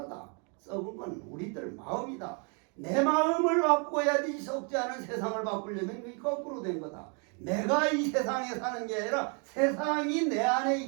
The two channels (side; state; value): left; quieter; 36.6 dB